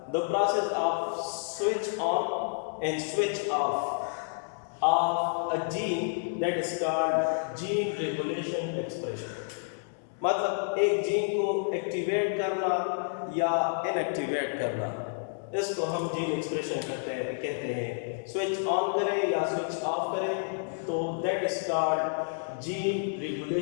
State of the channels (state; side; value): silent; right; digital silence